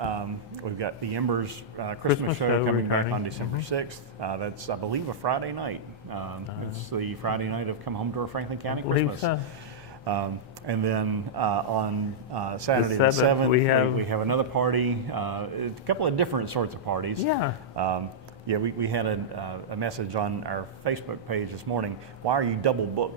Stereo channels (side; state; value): both; normal; correlation -0.10